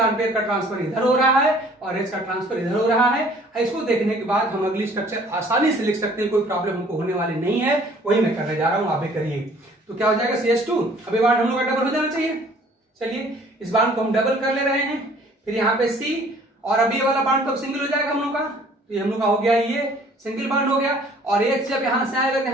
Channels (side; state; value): both; normal; correlation 0.55